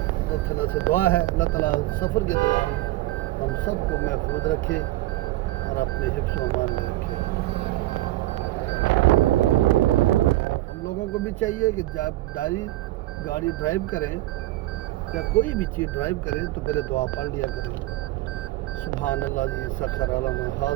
تعالیٰ سے دعا ہے اللہ تعالیٰ سفر کے دوران ہم سب کو محفوظ رکھے اور اپنے حفظ و امان میں رکھے. ہم لوگوں کو بھی چاہیے کہ جب گاڑی ڈرائیو کریں یا کوئی بھی چیز ڈرائیو کریں تو پہلے دعا پڑھ لیا کریں. سبحان اللہ جی سخر لنا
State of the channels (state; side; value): quieter; left; 16.9 dB